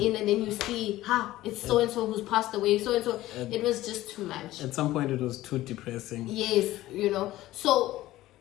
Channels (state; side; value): quieter; right; 15.9 dB